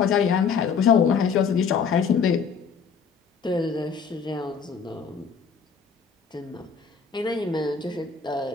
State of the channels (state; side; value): quieter; right; 6.2 dB